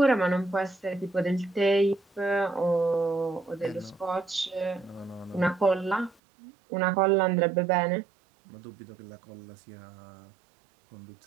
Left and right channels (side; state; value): left; drops out; at 6.2 s